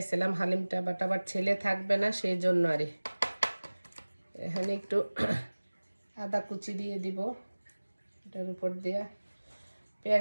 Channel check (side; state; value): both; inverted; correlation -1.00